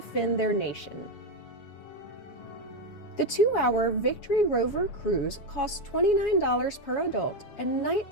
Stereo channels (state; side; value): late; right; 7.2 ms